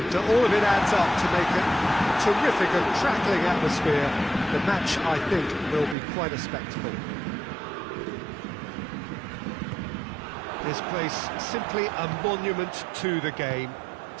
all of it adds up to make a terrific and crackling atmosphere. The match, I think, will be quite a spectacle. This place simply a monument to the game.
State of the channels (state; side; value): drops out; left; at 6.0 s